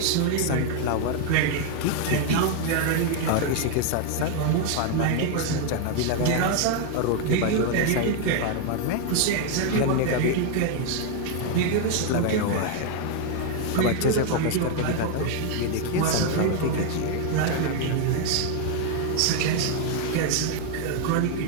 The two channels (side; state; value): both; different; correlation 0.00